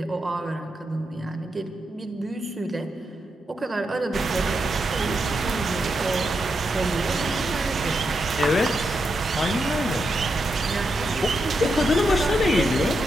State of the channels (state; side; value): normal; both; correlation 0.84